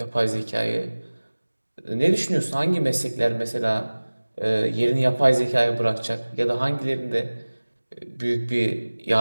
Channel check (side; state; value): both; inverted; correlation -1.00